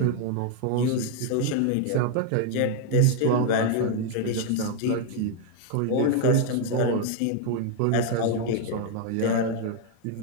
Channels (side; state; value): both; different; correlation 0.00